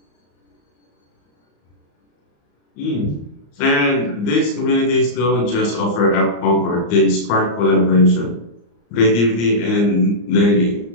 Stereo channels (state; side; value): late; right; 34 ms